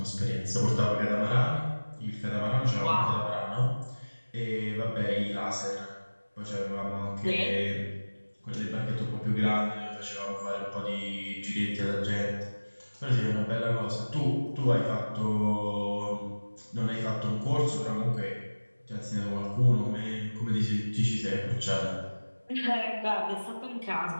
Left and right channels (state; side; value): inverted; both; correlation -1.00